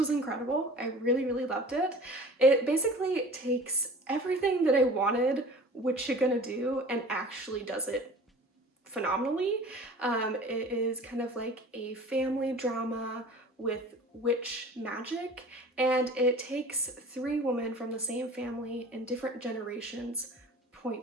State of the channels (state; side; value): normal; both; correlation 0.42